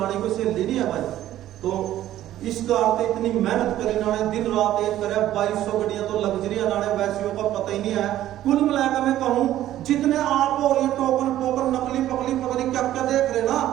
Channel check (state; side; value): quieter; left; 13.2 dB